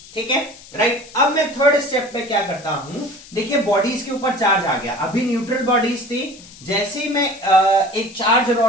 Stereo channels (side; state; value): left; noise; hiss, 20 dB below the sound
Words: ठीक है, राइट. अब मैं थर्ड स्टेप पे क्या करता हूं, देखिए बॉडीज के ऊपर चार्ज आ गया. अभी न्यूट्रल बॉडीज थी, जैसे ही मैं एक चार्ज